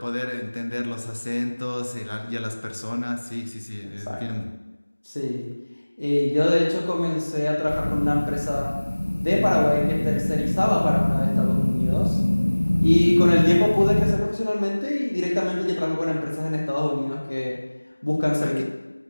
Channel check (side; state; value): both; inverted; correlation -1.00